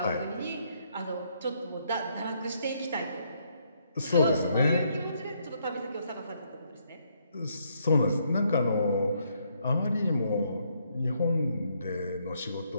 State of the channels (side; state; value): both; inverted; correlation -0.72